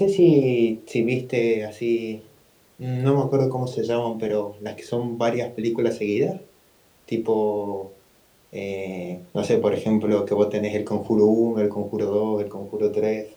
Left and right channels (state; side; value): identical; both; correlation 1.00